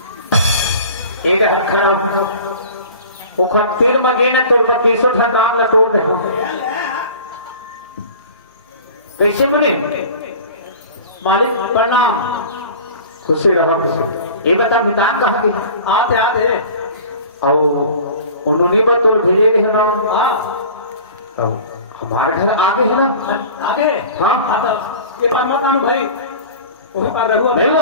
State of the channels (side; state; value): both; inverted; correlation -0.41